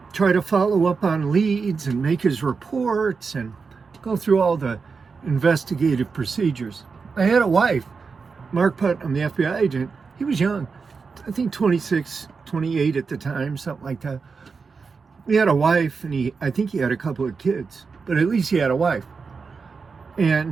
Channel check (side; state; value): left; quieter; 5.0 dB